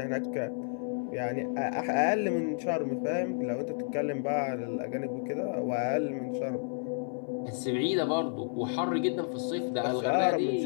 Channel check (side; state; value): right; silent; 57 dB below the other